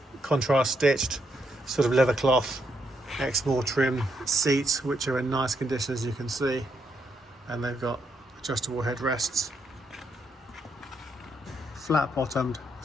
contrast stitched sort of leather cloth Exmoor trim seats, which are in nice condition, as you can see, and they've got adjustable headrests. Flat bottomed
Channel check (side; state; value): both; normal; correlation 0.78